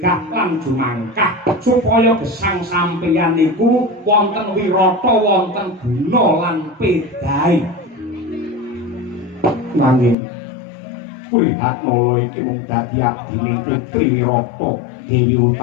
lan jumangkah supaya gesang sampeyan niku wonten wirata, wonten guna lan pedahe. Nanging Prihatmala iki mung dadi abdine Putri Wirata Dewi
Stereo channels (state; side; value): drops out; right; at 10.2 s